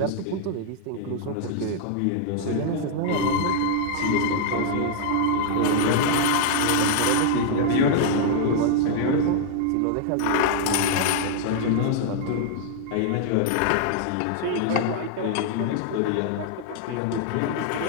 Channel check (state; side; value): different; both; correlation 0.00